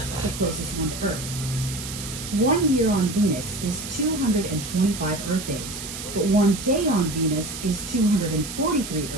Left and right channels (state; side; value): noise; right; hiss, 9 dB below the sound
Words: closest one to Earth. 1 year on Venus is 225 Earth days, but 1 day on Venus is 243